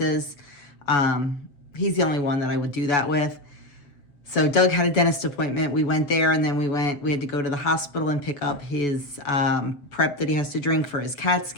He's the only one that I would do that with. So Doug had a dentist appointment. We went there, and then we had to go to the hospital and pick up his prep that he has to drink for his CAT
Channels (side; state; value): right; late; 6.8 ms